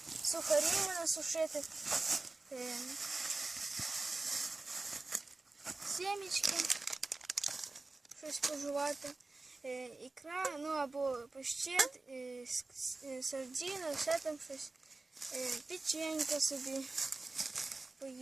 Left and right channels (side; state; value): left; quieter; 3.4 dB